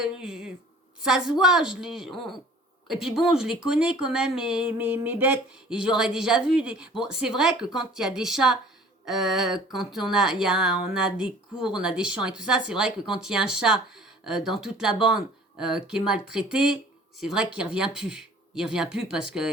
ça se voit, et puis bon, je les connais quand même, mes bêtes, et j'aurais déjà vu des... Bon, c'est vrai que quand il y a des chats, quand on a des cours, on a des champs et tout ça, c'est vrai que quand il y a un chat dans toute la bande qui est maltraité, c'est vrai qu'il revient plus. Il revient plus parce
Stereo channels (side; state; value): both; normal; correlation 0.49